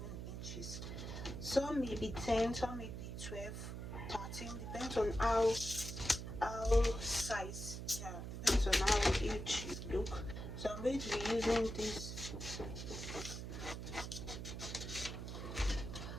inches. Some may be 10, some may be 12, 13, depends on how size, depends on how huge you look. So I'm going to be using this.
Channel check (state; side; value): noise; right; hum, 6 dB below the sound